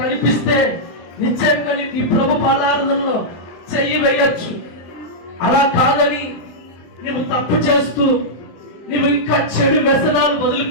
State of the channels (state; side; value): late; right; 23 ms